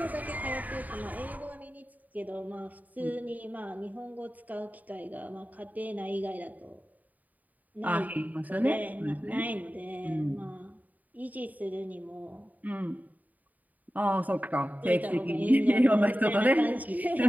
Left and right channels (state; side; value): late; left; 0.077 ms